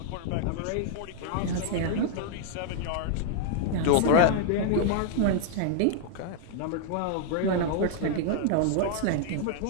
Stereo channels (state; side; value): different; both; correlation 0.00